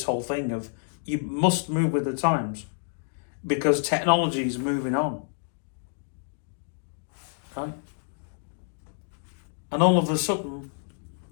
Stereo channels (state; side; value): silent; right; digital silence